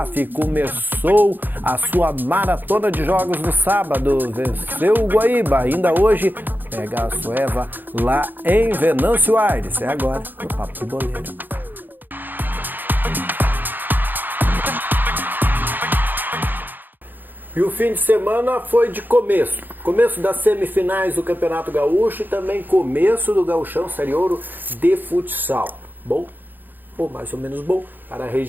começou a sua maratona de jogos no sábado, venceu o Guaíba. Ainda hoje pega a Sueva lá em Venâncio Aires. É agora no Papo de Boleiro. E o fim de semana foi de começo das semifinais do Campeonato Gaúcho e também começo do Gauchão Série Ouro de futsal. Bom, ou mais ou menos bom, para a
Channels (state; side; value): late; left; 0.089 ms